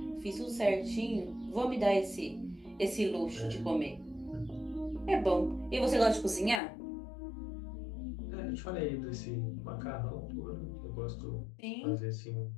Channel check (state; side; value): drops out; right; at 6.6 s